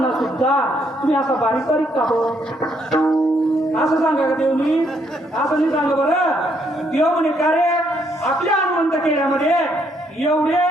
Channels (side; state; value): both; normal; correlation 0.72